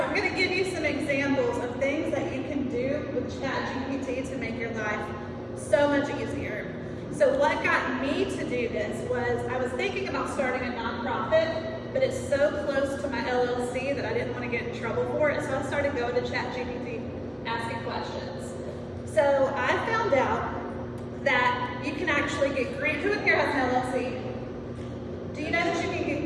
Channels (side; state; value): both; identical; correlation 1.00